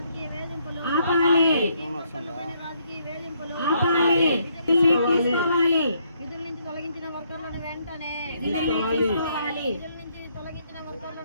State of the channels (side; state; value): both; inverted; correlation -0.72